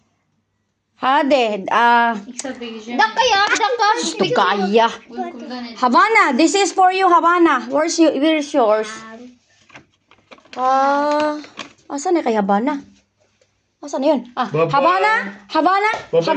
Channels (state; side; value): identical; both; correlation 1.00